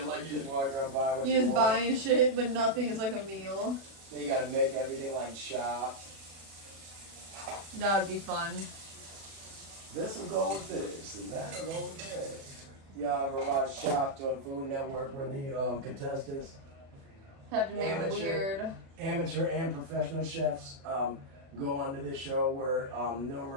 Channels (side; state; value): left; late; 36 ms